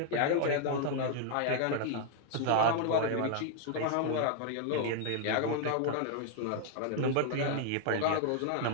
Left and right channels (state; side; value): different; both; correlation 0.00